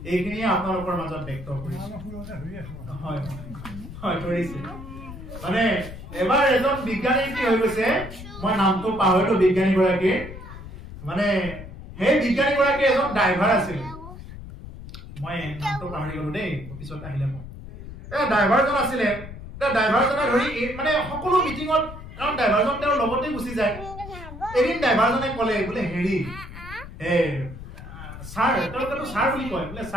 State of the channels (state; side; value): noise; left; rumble, 13 dB below the sound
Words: এইখিনি আপোনালোকৰ মাজত ব্যক্ত কৰিছো হয় হয় কৰিছে মানে এবাৰ এজন বিজ্ঞানী কি হৈ গৈছে মই নামটো পাহৰিলো বিজ্ঞানী গৰাকী মানে সেই বিজ্ঞানী গৰাকী এজন ড্ৰাইভাৰ আছিল মই নামটো পাহৰি গলো দেই পিছত আহিলে মই ড্ৰাইভাৰজন আছিলে ড্ৰাইভাৰজনে ধৰি মানে সকলো মিটিঙত কাৰণ ড্ৰাইভাৰজন তেওঁৰ লগতে গুচি যায় এদিন ড্ৰাইভাৰজনে ক'লে বোলে হেৰি স্যাৰ তেওঁলোকেতো স্যাৰ বুলি কয় বোলে